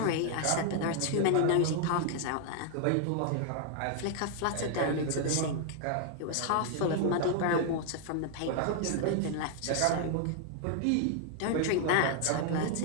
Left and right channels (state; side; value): different; both; correlation 0.00